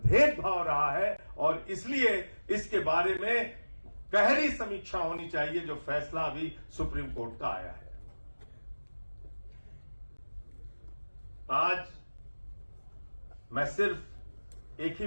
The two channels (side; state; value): both; inverted; correlation -1.00